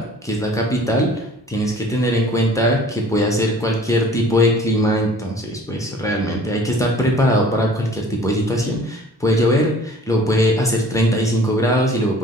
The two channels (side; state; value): both; normal; correlation 0.50